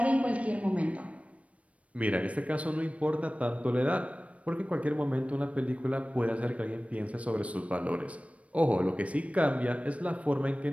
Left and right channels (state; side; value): late; left; 0.064 ms